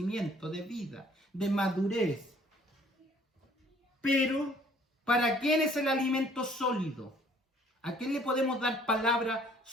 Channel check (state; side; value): normal; both; correlation 0.58